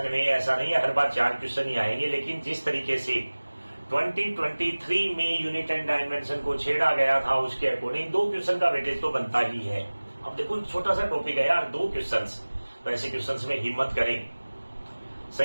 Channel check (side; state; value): both; inverted; correlation -1.00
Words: में ऐसा नहीं है हर बार 4 क्वेश्चन ही आएंगे, लेकिन जिस तरीके से 2023 में यूनिट एंड डायमेंशन को छेड़ा गया था उसके अकॉर्डिंग 2 क्वेश्चन का वेटेज तो बनता ही है। अब देखो छोटा सा टॉपिक है यार, 2 क्वेश्चन, तो ऐसे क्वेश्चन में हिम्मत करें,